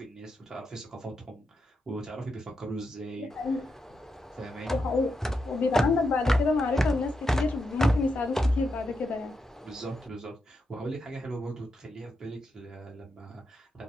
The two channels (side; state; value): both; normal; correlation 0.85